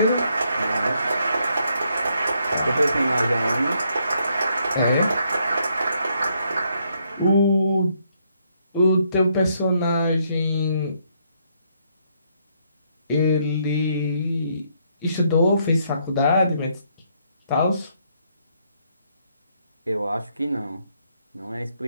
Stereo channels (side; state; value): both; inverted; correlation -0.73